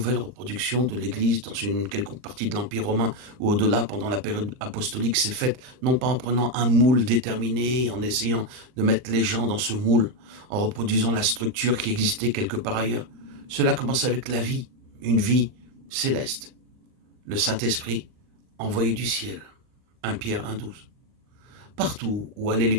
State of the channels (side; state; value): left; late; 39 ms